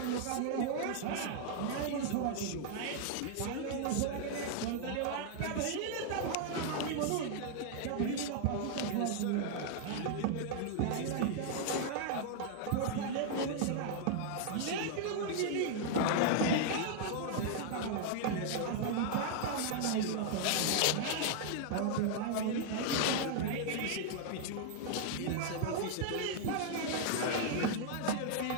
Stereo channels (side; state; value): both; different; correlation 0.00